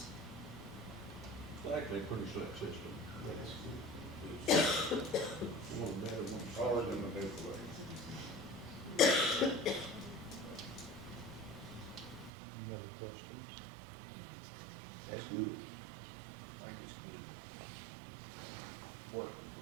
It's actually a pretty slick system. That's good. One better, one harder than the big way. Any other questions? That's good. I think it's good. Work.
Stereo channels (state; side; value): drops out; left; at 12.3 s